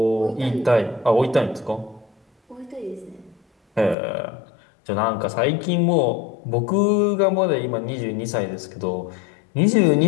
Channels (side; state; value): right; drops out; at 4.0 s